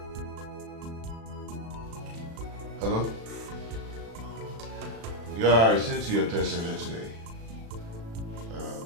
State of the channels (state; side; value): late; left; 36 ms